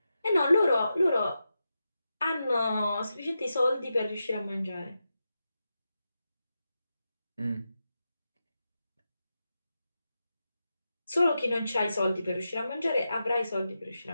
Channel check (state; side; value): inverted; both; correlation -0.89